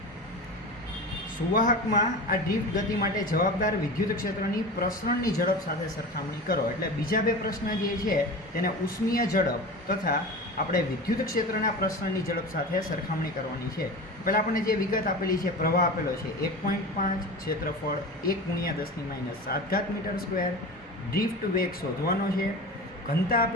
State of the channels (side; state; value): both; normal; correlation 0.31